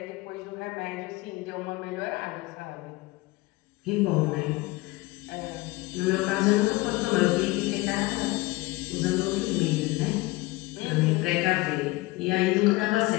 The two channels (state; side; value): quieter; right; 21.2 dB